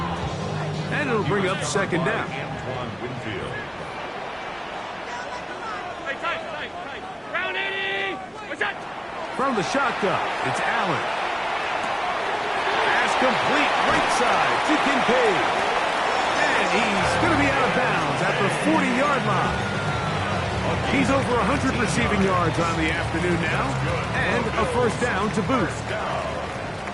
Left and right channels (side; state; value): both; identical; correlation 1.00